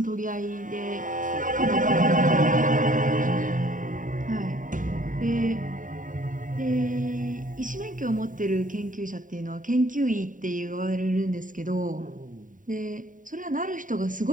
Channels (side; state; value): left; late; 0.38 ms